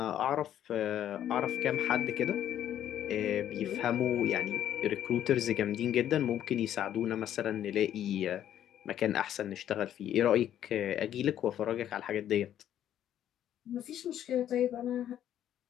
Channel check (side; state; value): right; quieter; 10.9 dB